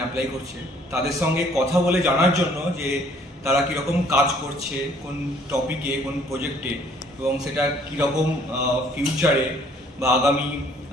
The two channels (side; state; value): both; normal; correlation 0.60